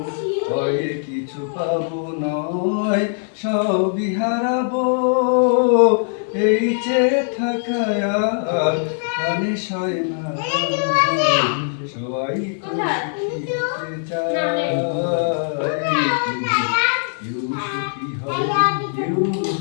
হয় কিছু পাবো নয় সবই হারাবো। এই যে থাকা আর প্রাণে সয় না, সবাই তো সুখী হতে চায়, কেউ সুখী হয় কেউ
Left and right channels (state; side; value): silent; right; 65 dB below the other